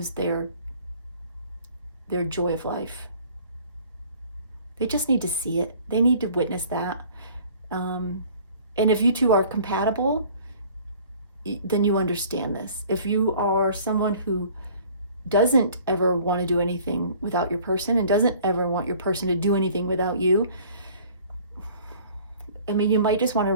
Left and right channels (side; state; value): both; inverted; correlation -0.51